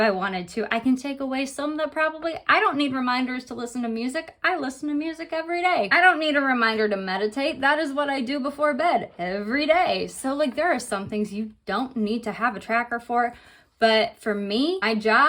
I wanted to. I can take away some that I don't need reminders to listen to music. I listen to music every day. I don't need a reminder to meditate. That is what I do before bed every day. So like there are some things you don't need to have a tracker for. But for me, my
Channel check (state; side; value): identical; both; correlation 1.00